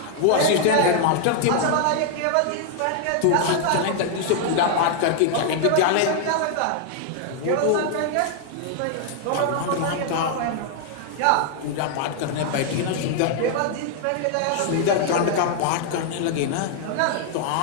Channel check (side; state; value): both; different; correlation 0.00